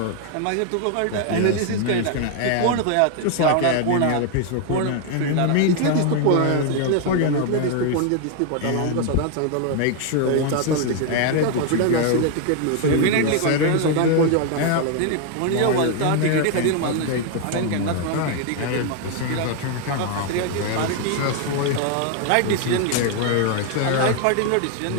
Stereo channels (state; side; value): different; both; correlation 0.00